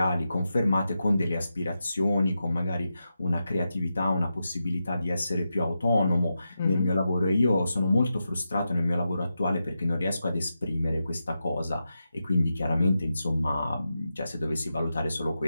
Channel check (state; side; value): inverted; both; correlation -0.89